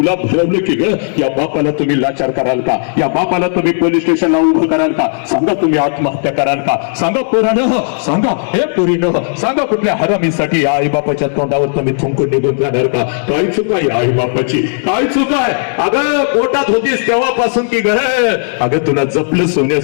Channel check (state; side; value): silent; right; digital silence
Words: भरवलं की ग? या बापाला तुम्ही लाचार कराल का? या बापाला तुम्ही पोलीस स्टेशनला उभं कराल का? सांगा, तुम्ही आत्महत्या कराल का? सांगा पोरानं, सांगा. हे पोरीनं सांगा, कुठल्या हरामीसाठी या आई बापाच्या तोंडावर तुम्ही थुंकून निघून जाणार का? काय चुका या आई बापाची? काय चुका आहे? अगं पोटात होतीस तेव्हापासून की ग? अगं तुला जपलं